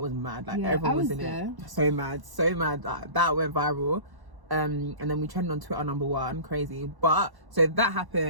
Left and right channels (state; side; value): late; left; 1.1 ms